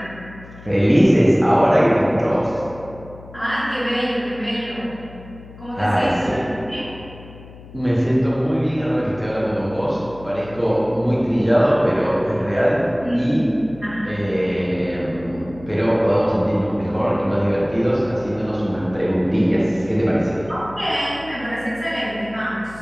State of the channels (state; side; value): noise; left; hum, 18 dB below the sound